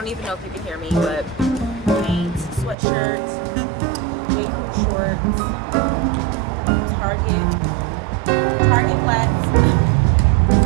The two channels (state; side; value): drops out; left; at 2.8 s